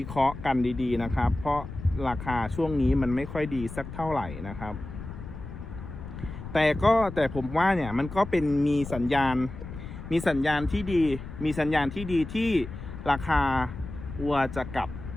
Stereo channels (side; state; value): left; noise; rumble, 11 dB below the sound